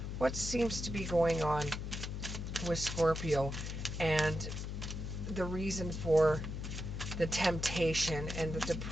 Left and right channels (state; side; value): noise; left; hum, 5 dB below the sound